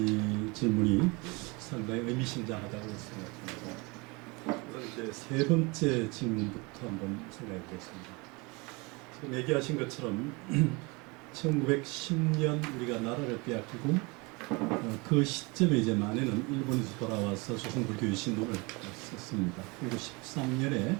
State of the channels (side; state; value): left; quieter; 27.2 dB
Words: 질문이 상당히 의미심장하다고 생각합니다. 우선 이제 세 번째 질문부터 한번 생각해 보겠습니다. 지금 얘기하신 것처럼 1910년 우리가 나라를 빼앗기고 그 시점에 이제 만에는 일본에서 돌아와서 조선불교 유신론을 썼습니다. 그리고 13년에